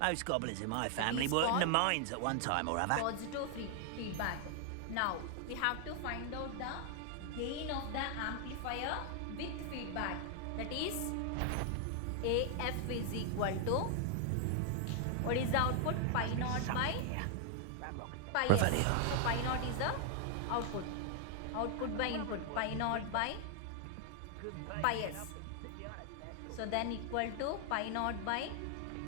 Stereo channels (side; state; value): both; different; correlation 0.00